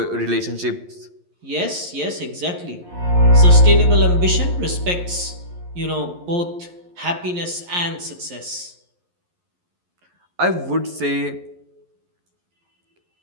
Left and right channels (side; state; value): left; late; 11 ms